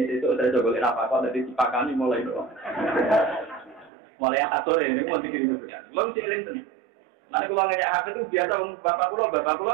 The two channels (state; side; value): drops out; left; at 3.9 s